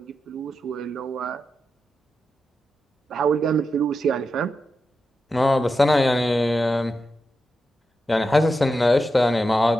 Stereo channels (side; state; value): both; normal; correlation 0.89